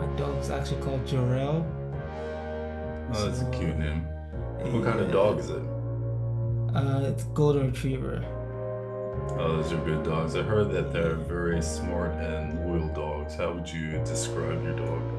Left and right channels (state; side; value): identical; both; correlation 1.00